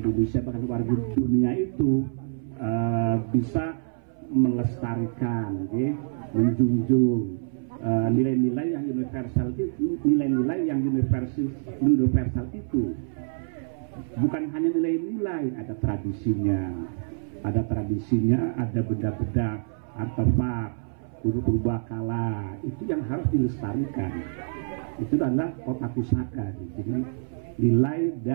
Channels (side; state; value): left; silent; 60 dB below the other